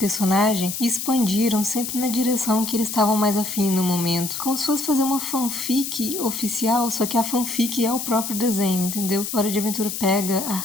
e expandiram sempre na direção que eles estavam mais afim no momento. Como se fosse fazer uma fanfic oficial, só que a fanfic é o próprio próprio desenho, entendeu? Hora de Aventura pega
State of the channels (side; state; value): left; noise; hiss, 5 dB below the sound